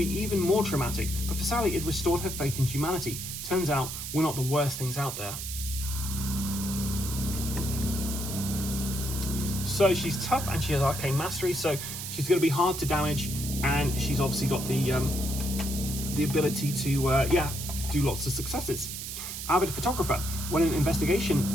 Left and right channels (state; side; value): noise; right; hiss, 7 dB below the sound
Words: even more traumatic, but for Sally it restored her faith in humanity. Turns out, we're not the worst things out there. So she's tough and she has arcane mastery, so she's going to be hard to damage, and she's obviously got the ability to do lots of successes. Avid photographer. When an investigator